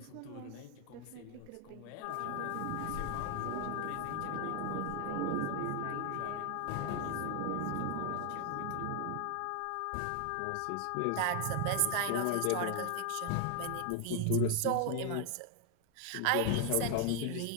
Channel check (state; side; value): different; both; correlation 0.00